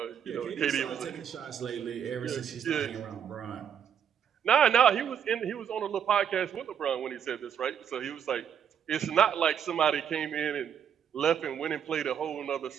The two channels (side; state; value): left; quieter; 8.4 dB